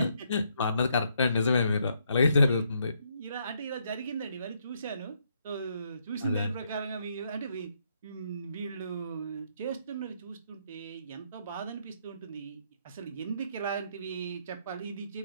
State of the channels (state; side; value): inverted; both; correlation -0.74